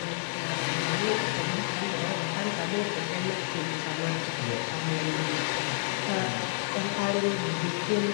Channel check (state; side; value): silent; right; digital silence